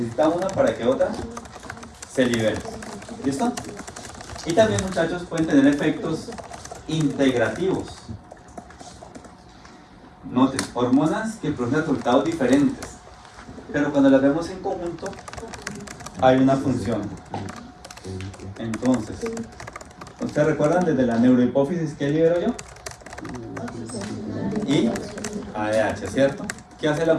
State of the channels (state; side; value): identical; both; correlation 1.00